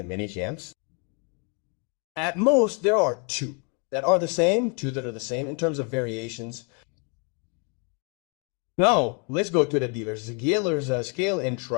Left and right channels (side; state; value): right; quieter; 36.7 dB